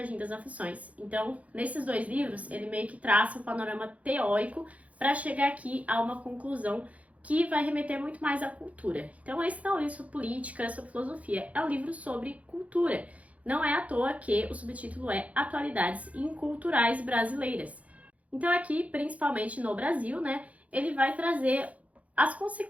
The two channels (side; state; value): left; late; 0.067 ms